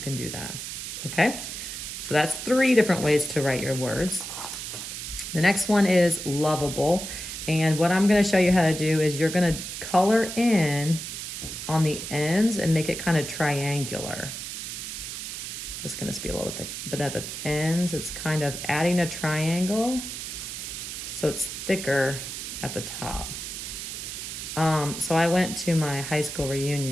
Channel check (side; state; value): right; noise; hiss, 7 dB below the sound